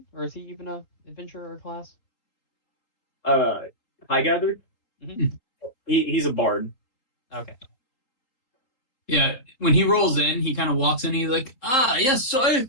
Or is he even a adventurer class? Highgather? Mm-hmm. He's a bard. Okay. Yeah, when he rolls in, he kind of walks in. He's like, yes, so I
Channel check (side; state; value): right; late; 3.8 ms